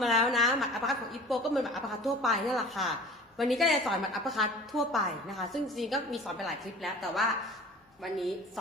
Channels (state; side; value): normal; both; correlation 0.42